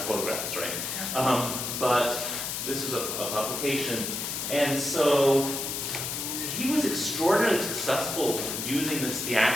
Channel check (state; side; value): noise; left; hiss, 3 dB below the sound